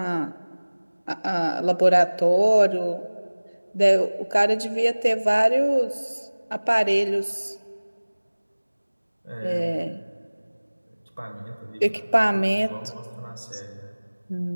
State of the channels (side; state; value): both; inverted; correlation -1.00